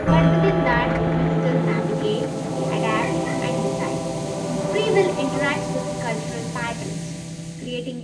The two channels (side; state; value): both; identical; correlation 1.00